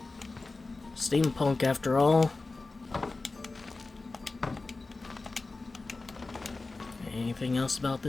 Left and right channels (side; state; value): right; quieter; 3.5 dB